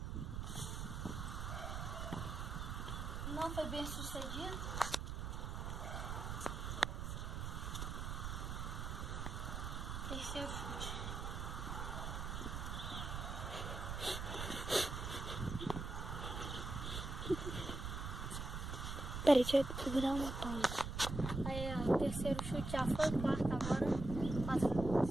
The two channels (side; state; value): right; noise; rumble, 4 dB below the sound